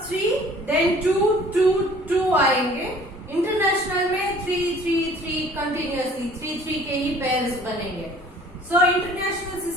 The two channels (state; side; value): normal; both; correlation 0.52